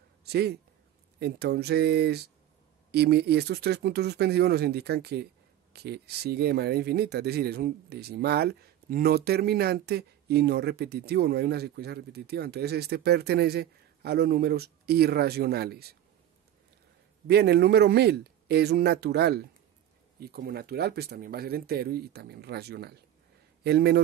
¿sí? Entonces, y estos 3 puntos suspensivos nos indican que sigue de manera infinita, es decir, es un decimal no terminante y no repetitivo, no hay una secuencia repetitiva. Entonces este pertenece a los números irracionales. Bien, el número 1000 es un natural, y como natural pues también va a ser entero y también racional. El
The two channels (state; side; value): quieter; left; 11.7 dB